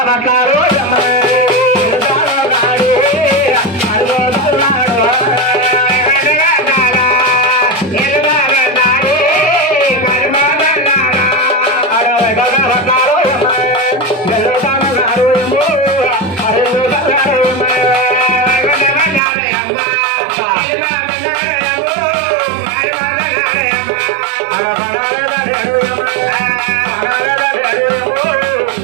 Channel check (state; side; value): drops out; left; at 19.2 s